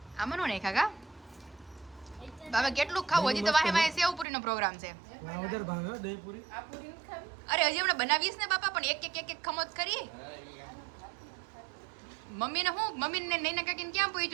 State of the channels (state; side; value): drops out; left; at 4.2 s